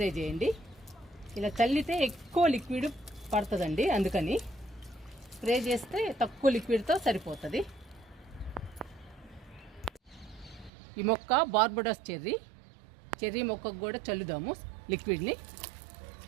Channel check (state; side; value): drops out; left; at 10.7 s